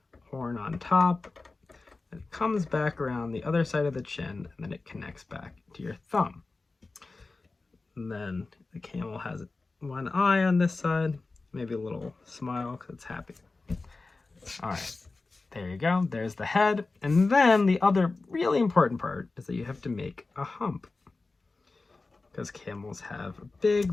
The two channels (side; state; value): right; quieter; 3.7 dB